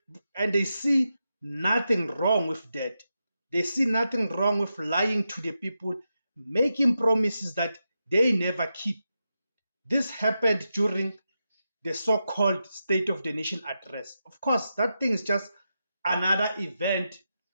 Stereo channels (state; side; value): inverted; both; correlation -0.88